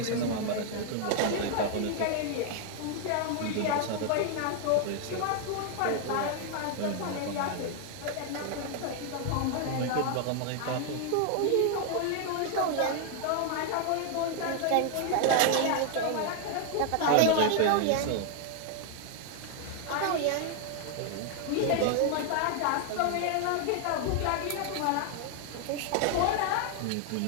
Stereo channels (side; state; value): both; different; correlation 0.00